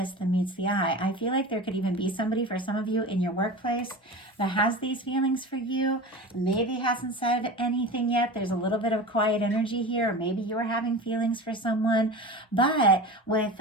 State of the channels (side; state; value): both; normal; correlation 0.32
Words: than meets the eye. I feel like there could even be somebody, for some of you in your workplace, that has these feelings for you, maybe hasn't said anything yet. There's a little bit of quiet energy here, or maybe you're having feelings for someone. But with